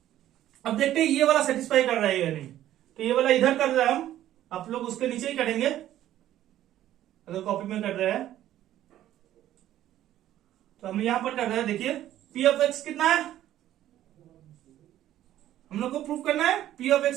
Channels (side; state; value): left; quieter; 12.8 dB